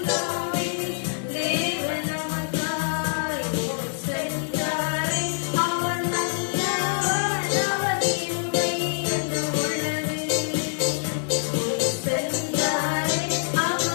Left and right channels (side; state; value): right; silent; 62 dB below the other